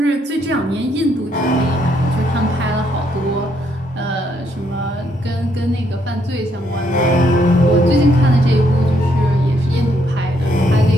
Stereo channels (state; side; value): normal; both; correlation 0.73